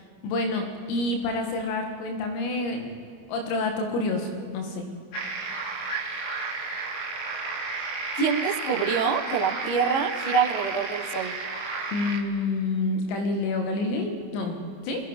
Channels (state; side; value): late; right; 25 ms